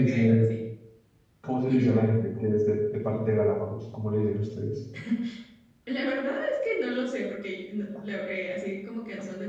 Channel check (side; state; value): both; identical; correlation 1.00